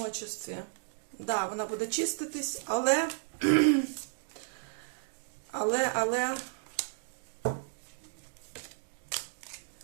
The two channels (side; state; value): left; silent; digital silence